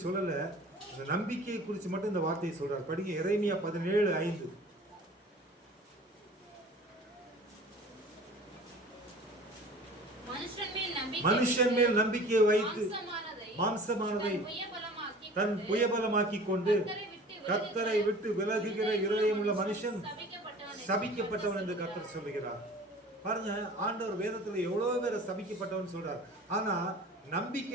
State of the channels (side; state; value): both; normal; correlation 0.43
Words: சொல்லல, இந்த நம்பிக்கையை குறித்து மட்டும் இந்த வார்த்தையை சொல்றாரு. படிங்க எரேமியா 17:5. மனுஷன் மேல் நம்பிக்கையை வைத்து மாம்சமானதை தன் புயபலமாக்கி கொண்டு கர்த்தரை விட்டு விலகுகிற இருதயமுள்ள மனுஷன் சபிக்கப்பட்டவன் என்று கர்த்தர் சொல்லுகிறார். பாருங்க, ஆண்டவர் வேதத்துல எவ்வளவு பேரை சபிக்கப்பட்டவன் சொல்றார். ஆனா